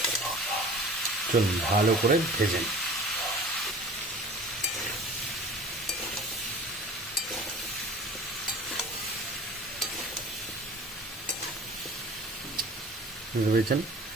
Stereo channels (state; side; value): normal; both; correlation 0.42